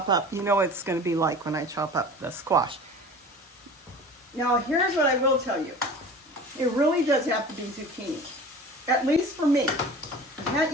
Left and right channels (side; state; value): both; normal; correlation 0.39